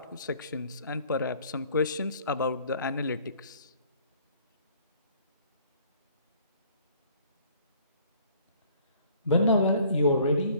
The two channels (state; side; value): inverted; both; correlation -0.57